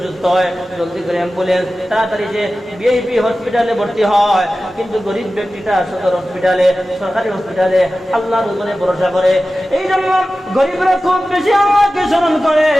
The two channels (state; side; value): normal; both; correlation 0.95